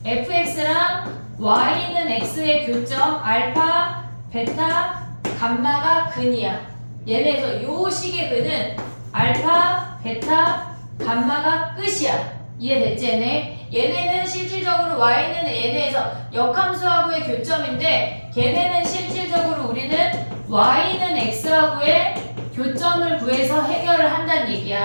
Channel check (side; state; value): both; inverted; correlation -1.00